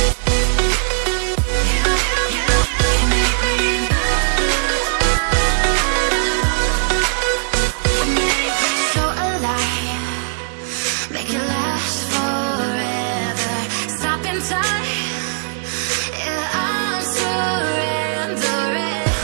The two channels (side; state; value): left; silent; digital silence